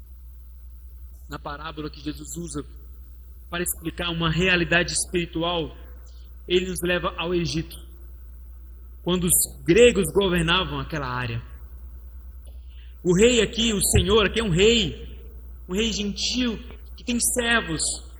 Na parábola que Jesus usa para explicar uma realidade espiritual, ele nos leva ao Egito, quando os gregos governavam aquela área. O rei aqui, o senhor aqui é um rei gentil, que tem servos,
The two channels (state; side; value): identical; both; correlation 1.00